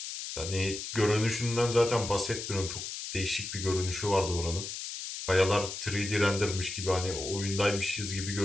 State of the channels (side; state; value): left; noise; hiss, 7 dB below the sound